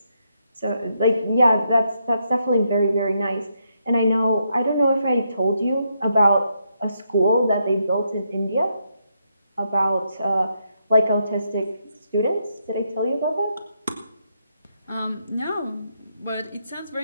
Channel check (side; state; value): both; inverted; correlation -0.79